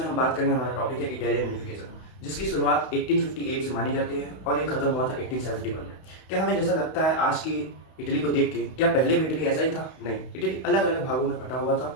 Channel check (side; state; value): right; late; 32 ms